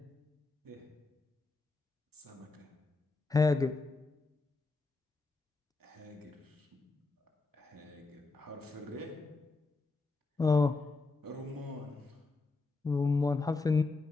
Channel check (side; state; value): right; quieter; 3.6 dB